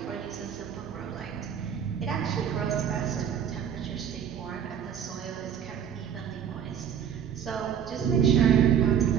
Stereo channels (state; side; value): quieter; left; 8.5 dB